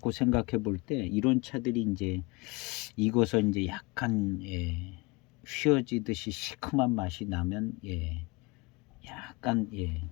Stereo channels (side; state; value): right; quieter; 26.0 dB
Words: 생각해 볼 때 이런 차들이 이제 익어서 이제 약간 휘어지듯이 시큼한 맛이 나면 약간